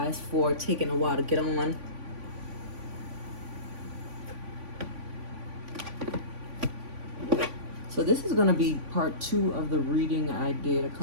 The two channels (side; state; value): left; late; 3.5 ms